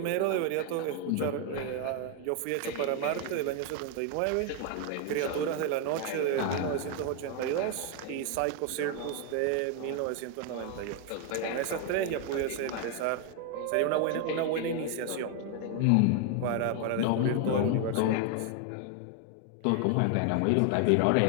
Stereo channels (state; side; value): different; both; correlation 0.01